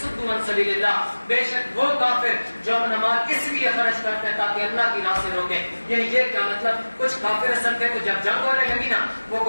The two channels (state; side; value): inverted; both; correlation -1.00